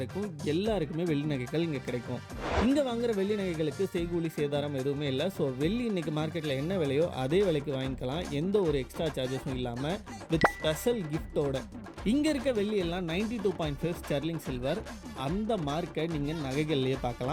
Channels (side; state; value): both; identical; correlation 1.00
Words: எல்லாருக்குமே வெள்ளி நகைகள் இங்கே கிடைக்கும். இங்கே வாங்குகிற வெள்ளி நகைகளுக்கு செய்கூலி சேதாரம் எதுவுமே இல்லை. ஸோ வெள்ளி இன்றைக்கி மார்க்கெட்டில் என்ன விலையோ அதே விலைக்கு வாங்கிக்கலாம், எந்த ஒரு எக்ஸ்ட்ரா சார்ஜஸும் இல்லாமல், வித் ஸ்பெஷல் கிஃப்டோட. இங்கே இருக்க வெள்ளி எல்லாம் 92.5 ஸ்டெர்லிங் சில்வர். அந்த மார்க்கை நீங்கள் நகைகள்லேயே